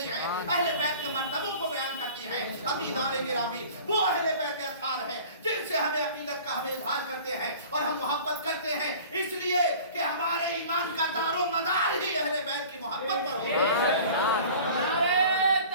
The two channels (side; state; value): both; inverted; correlation -0.44